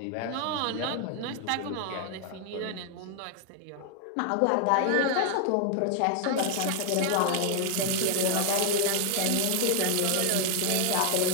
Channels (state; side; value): different; both; correlation 0.00